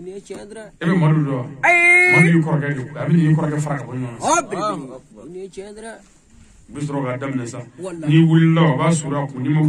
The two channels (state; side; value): identical; both; correlation 1.00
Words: e bɛ Madu dɔn Madu y'i kɔrɔkɛ de a bɛ n'i kɔrɔkɛ fara ka bɔ ɲɔgɔn na u bɛ sɔrɔ k'a daminɛ sa n'i wulila o b'a suru a kun n'i ma